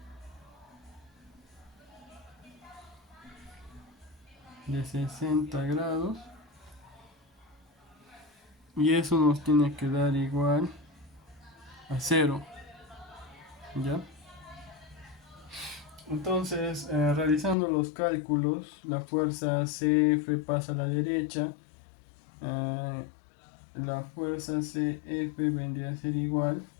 De 60 grados. Y eso nos tiene que dar igual a 0. ¿Ya? Entonces, realizando los cálculos, la fuerza CF pasa a la derecha. La fuerza CF vendría a ser igual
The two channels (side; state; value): right; drops out; at 17.6 s